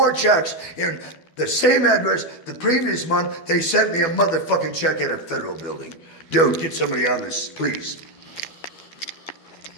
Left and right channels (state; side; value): late; right; 12 ms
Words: checks in the same address the previous month they sent me a motherfucking check at a federal building? Dude, get somebody on this, please.